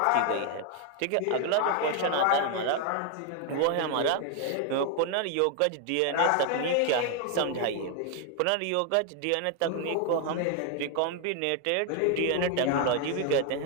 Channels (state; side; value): different; both; correlation 0.00